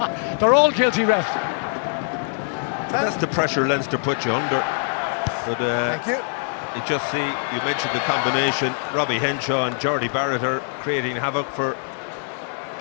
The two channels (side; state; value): right; silent; 57 dB below the other